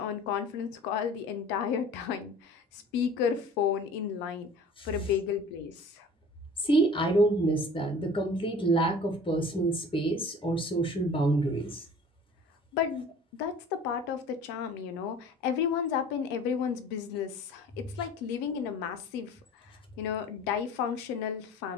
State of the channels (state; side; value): normal; both; correlation 0.45